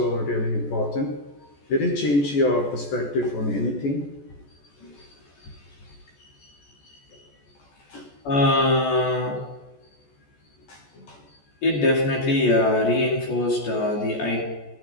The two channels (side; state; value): right; late; 14 ms